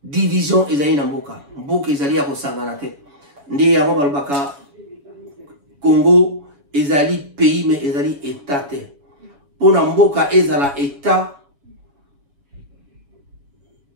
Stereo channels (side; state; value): left; late; 7.1 ms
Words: division ezali na mboka. Mboka ezali ya ko sangana te. Ndi yango balbaka Congo ezali pays mais ezali état te. Pona mboka ezala état